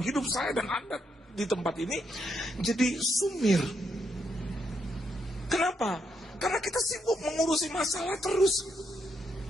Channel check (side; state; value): both; normal; correlation 0.78